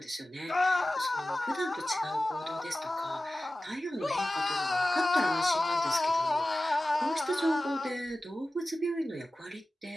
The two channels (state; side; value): normal; both; correlation 0.95